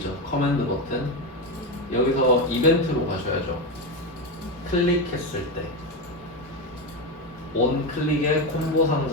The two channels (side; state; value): both; normal; correlation 0.14